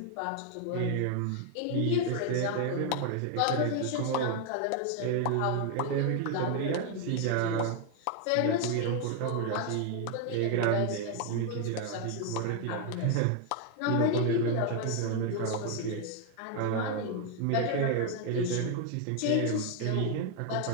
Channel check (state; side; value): different; both; correlation 0.00